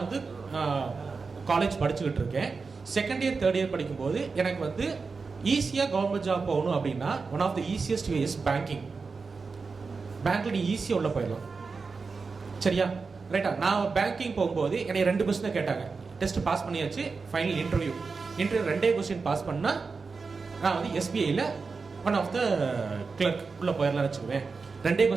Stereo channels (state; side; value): quieter; left; 4.6 dB